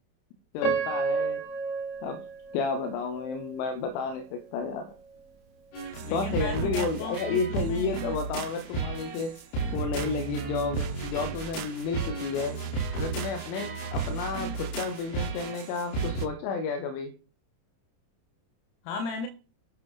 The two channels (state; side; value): late; right; 31 ms